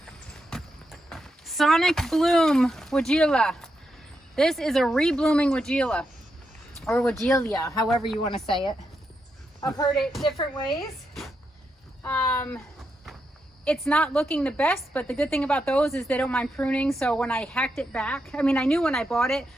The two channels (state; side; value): normal; both; correlation 0.84